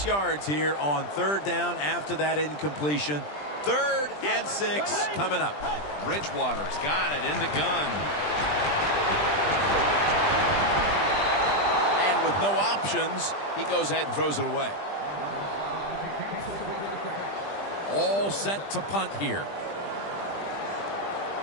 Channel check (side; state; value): right; late; 20 ms